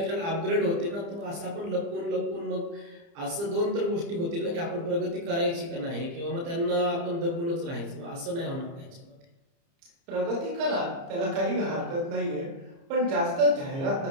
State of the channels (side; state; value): left; late; 30 ms